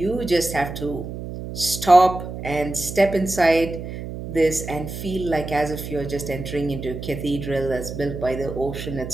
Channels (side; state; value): right; noise; hum, 8 dB below the sound